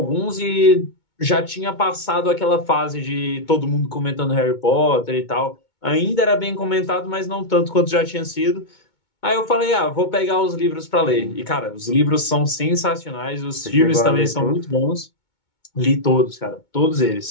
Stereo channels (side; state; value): right; late; 2.2 ms